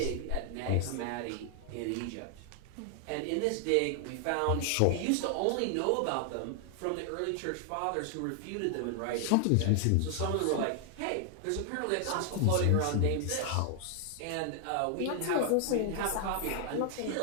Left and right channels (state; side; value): different; both; correlation 0.00